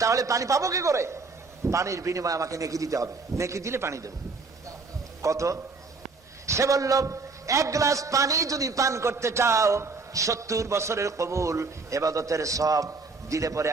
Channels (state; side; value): quieter; left; 4.1 dB